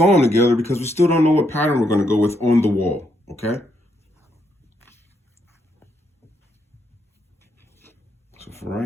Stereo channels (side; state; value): both; normal; correlation 0.77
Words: them together because we still don't know what pattern we're going to go with on the wall, okay? So for